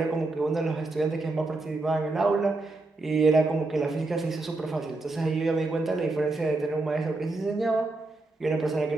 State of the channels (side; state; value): left; quieter; 3.1 dB